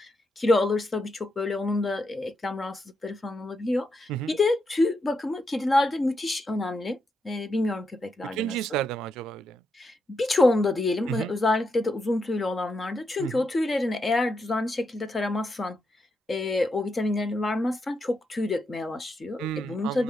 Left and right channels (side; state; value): both; normal; correlation 0.83